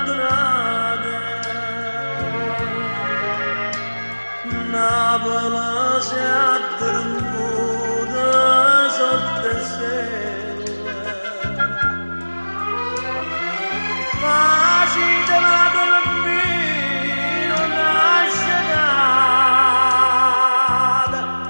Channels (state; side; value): inverted; both; correlation -1.00